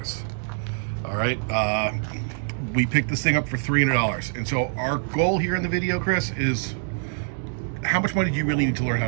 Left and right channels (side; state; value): left; silent; digital silence